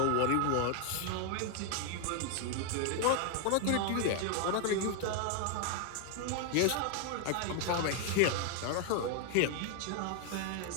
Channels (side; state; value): both; different; correlation 0.00